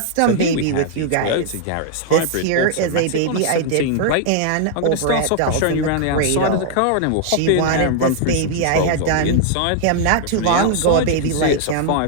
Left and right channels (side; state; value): both; different; correlation -0.01